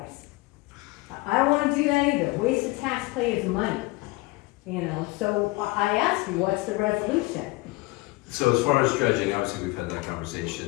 I don't want to do that either, waste of taxpayers' money. So I asked you, what's the resolution? So as far as dredging, obviously we've had that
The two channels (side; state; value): right; quieter; 22.3 dB